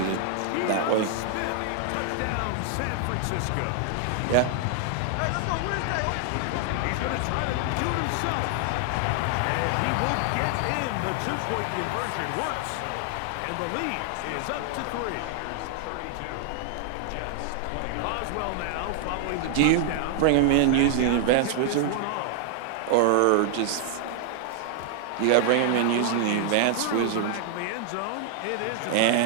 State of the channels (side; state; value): both; different; correlation 0.00